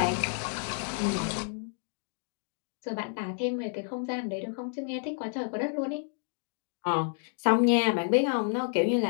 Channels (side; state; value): right; silent; 58 dB below the other